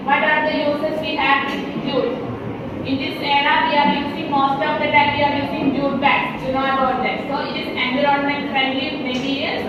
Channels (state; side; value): identical; both; correlation 1.00